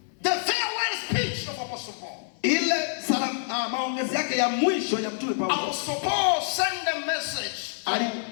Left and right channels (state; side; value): silent; right; 58 dB below the other